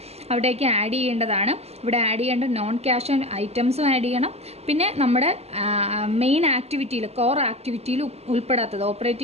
അവിടേക്ക് ആഡ് ചെയ്യേണ്ടതാണ്. ഇവിടെ ആഡ് ചെയ്യേണ്ട നോൺ ക്യാഷ് ഐറ്റംസും ആഡ് ചെയ്യണം. പിന്നെ നമ്മുടെ മെയിൻ ആക്ടിവിറ്റിയിൽ, കോർ ആക്ടിവിറ്റിയിൽ ഉൾപ്പെടാത്തത്,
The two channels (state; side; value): late; left; 0.30 ms